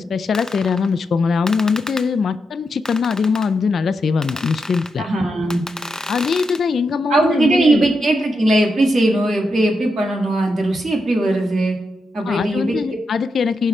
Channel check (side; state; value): both; normal; correlation 0.85